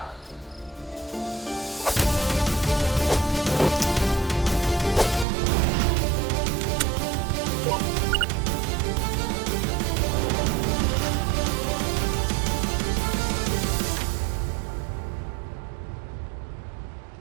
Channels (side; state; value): left; drops out; at 5.2 s